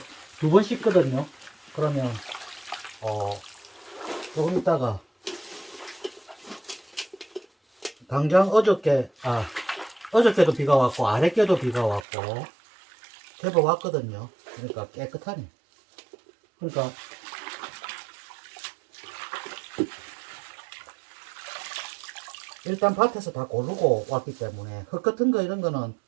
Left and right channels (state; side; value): drops out; left; at 12.0 s